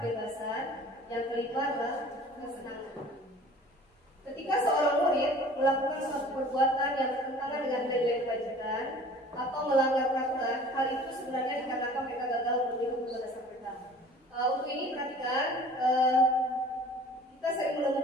kebebasan, yang kelima adalah kesenangan. Ketika seorang murid melakukan suatu perbuatan yang bertentangan dengan nilai-nilai kewajiban atau melanggar peraturan, hal itu sebenarnya dikarenakan mereka gagal memenuhi kebutuhan dasar mereka. Untuk ini perhatikan, kita sering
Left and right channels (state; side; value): normal; both; correlation 0.47